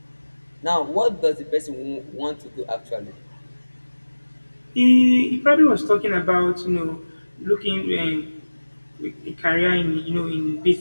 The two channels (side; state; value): both; inverted; correlation -1.00